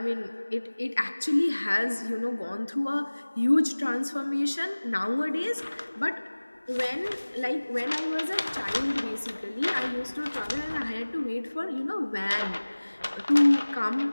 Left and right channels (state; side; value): inverted; both; correlation -1.00